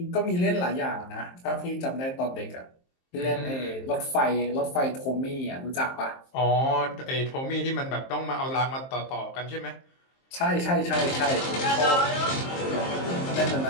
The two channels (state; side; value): late; right; 23 ms